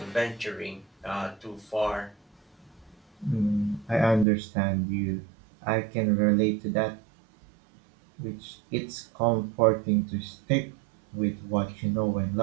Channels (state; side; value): drops out; left; at 4.2 s